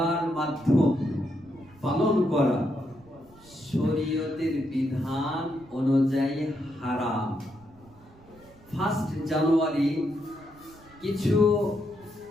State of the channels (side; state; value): right; noise; rumble, 25 dB below the sound